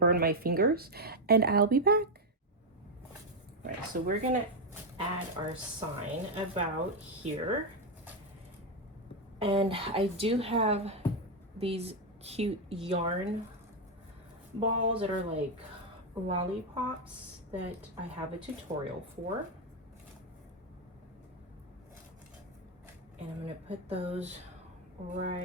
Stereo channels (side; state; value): both; normal; correlation 0.04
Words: my fingers, and I'll be back. All right, so we're gonna add our sign about here. And I do have these cute yarn balls that are like lollipops that I have a tutorial for. And I'm gonna put those